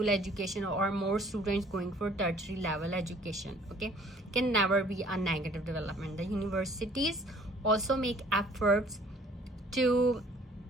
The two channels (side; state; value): both; normal; correlation 0.56